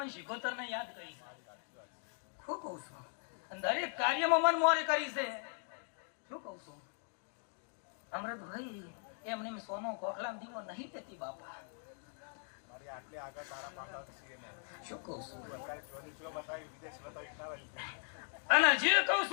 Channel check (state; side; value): silent; right; 52 dB below the other